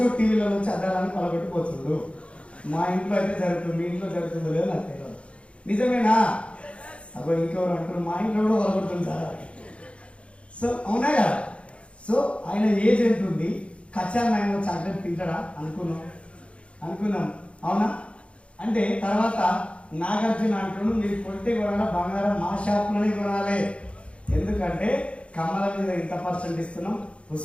టీవీలో నుంచి అద్దాలని పలగొట్టిపోతుండు. మా ఇంట్లో అయితే జరుగుతుంది, మీ ఇంట్లో జరుగుతుందో లేదో నాకు తెలియదు. నిజమేనా? అబ్బో ఇంకెవరు అంటారు, మా ఇంట్లో కూడా పలగొడుతుంది సార్. సో అవునా కదా? సో ఆయన ఏజ్ ఎంత ఉంది, కచ్చా మ్యాంగో చాక్లెట్ తింటాడా అనుకున్నాం. అవునా? అంటే తర్వాత నాగార్జున అంటున్నాడు, మీరు కొట్టే కొనాలా బంగారం మా షాప్లోనే కొనాలి. ఎందుకంటే కమల మీద ఇంత % ఇస్తున్నాం,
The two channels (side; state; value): right; late; 0.060 ms